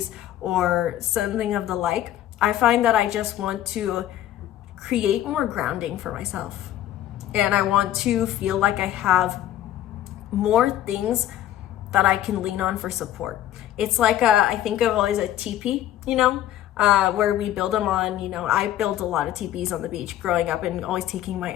or something of the like, I find that I just want to create more grounding for myself. And I want to feel like I have more things that I can lean on for support. It's like I think of always a teepee, where we build them on, I built a lot of teepees on the beach growing up and always taking my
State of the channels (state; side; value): quieter; right; 12.6 dB